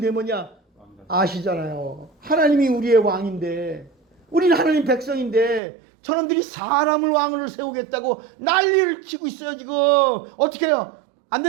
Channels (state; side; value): drops out; left; at 5.6 s